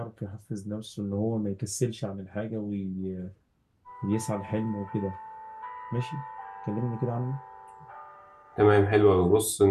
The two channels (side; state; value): both; identical; correlation 1.00